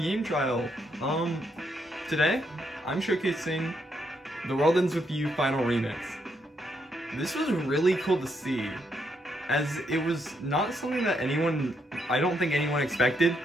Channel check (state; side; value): normal; both; correlation 0.77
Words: trial. Today I'm showcasing The World Ends With You Final Remix. This was really cool to see, as it was not something that I don't think anyone expected